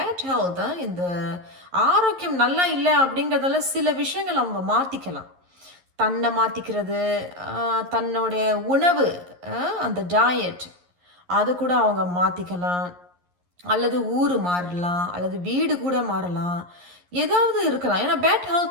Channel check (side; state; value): left; late; 11 ms